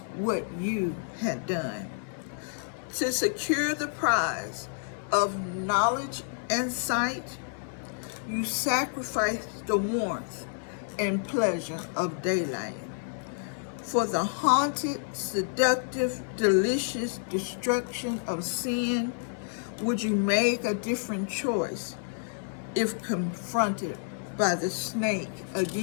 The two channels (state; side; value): silent; right; 58 dB below the other